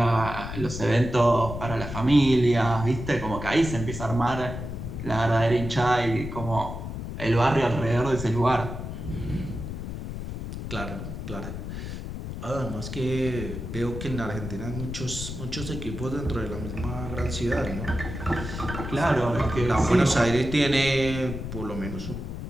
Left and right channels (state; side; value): noise; left; rumble, 7 dB below the sound